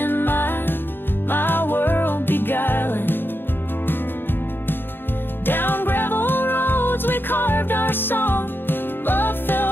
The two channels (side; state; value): right; late; 0.10 ms